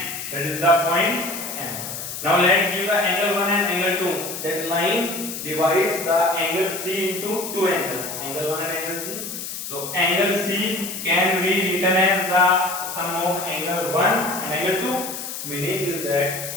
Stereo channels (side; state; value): left; noise; hiss, 7 dB below the sound